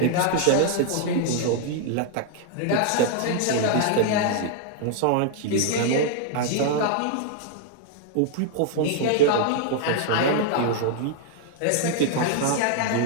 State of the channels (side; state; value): both; different; correlation 0.00